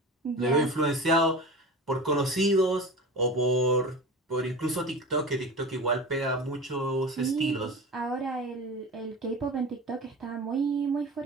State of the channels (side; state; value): both; normal; correlation 0.31